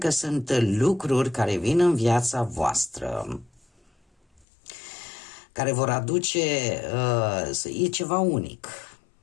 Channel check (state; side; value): drops out; right; at 4.5 s